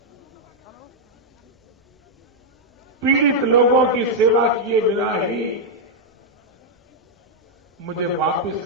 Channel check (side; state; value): both; normal; correlation -0.03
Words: पीड़ित लोगों की सेवा किए बिना ही मुझे वापस